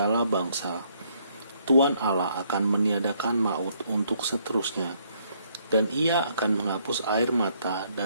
bangsa. Tuhan Allah akan meniadakan maut untuk seterusnya, dan Ia akan menghapus air mata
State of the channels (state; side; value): inverted; both; correlation -0.69